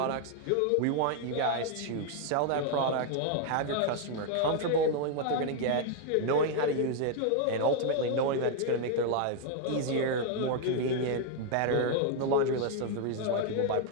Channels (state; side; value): different; both; correlation 0.00